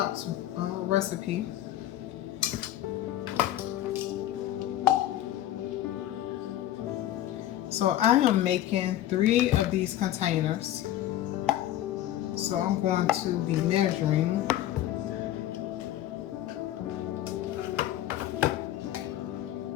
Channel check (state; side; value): quieter; right; 13.2 dB